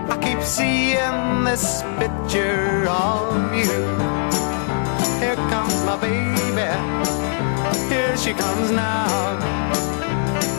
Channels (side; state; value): right; silent; 63 dB below the other